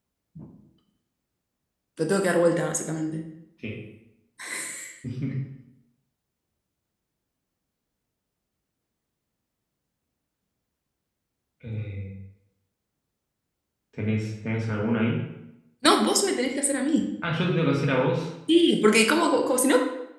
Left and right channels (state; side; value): identical; both; correlation 1.00